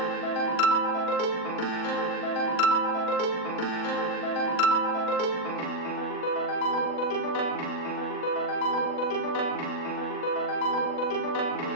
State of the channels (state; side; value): late; right; 40 ms